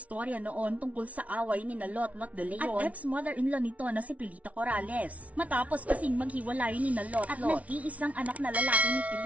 noon tungkol sa away ni na Lotlot de Leon at ex-mother-in-law nito na si Pilita Corrales. Matapos kasing maghiwalay ni na Lotlot at nag-iisang anak na lalaki ni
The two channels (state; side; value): late; left; 0.067 ms